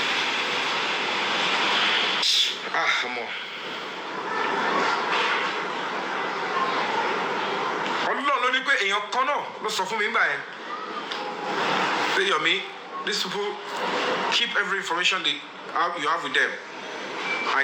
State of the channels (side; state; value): both; identical; correlation 1.00